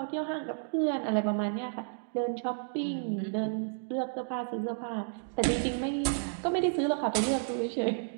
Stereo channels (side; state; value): left; silent; digital silence